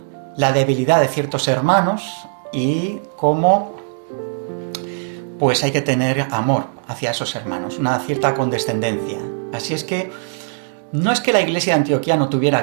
debilidad de ciertos hermanos y cómo pues hay que tener amor hacia esos hermanos, una cierta condescendencia. Así es que no es que la iglesia de Antioquía no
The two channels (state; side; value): silent; left; digital silence